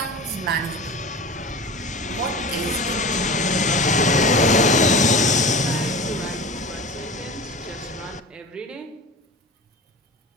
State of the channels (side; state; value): both; normal; correlation 0.33